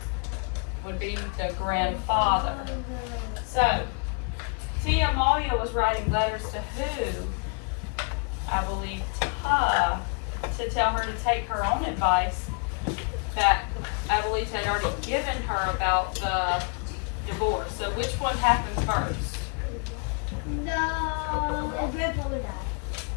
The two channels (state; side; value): quieter; right; 38.4 dB